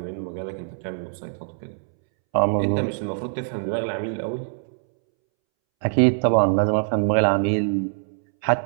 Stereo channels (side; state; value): left; silent; 63 dB below the other